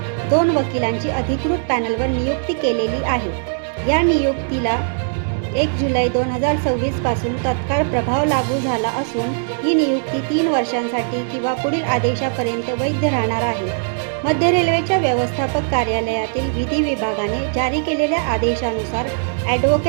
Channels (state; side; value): silent; left; digital silence